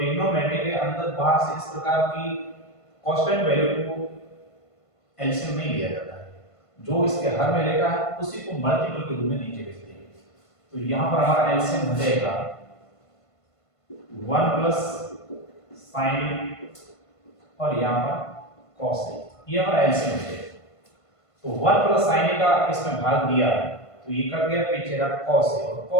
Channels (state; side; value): late; right; 1.5 ms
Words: के अंदर बाहर से इस प्रकार की कांस्टेंट वैल्यू को एलसीएम नहीं लिया जाता है। जो इसके हर में लेखा है उसी को मल्टीपल के रूप में नीचे लिखते हैं। तो यहाँ पर हमारा एलसीएम हो जाएगा 1 प्लस sin और यहाँ पर cos a, ये हमारा एलसीएम हो जाएगा। तो 1 प्लस sin a का इसमें भाग दिया तो ये कट गया, पीछे रहा cos a और